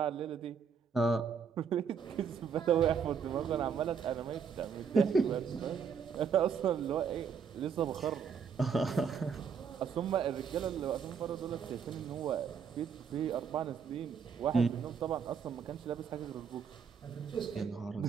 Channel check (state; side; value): quieter; left; 6.6 dB